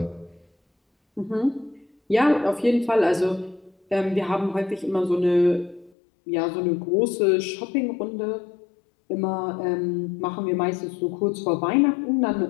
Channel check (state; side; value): drops out; right; at 5.9 s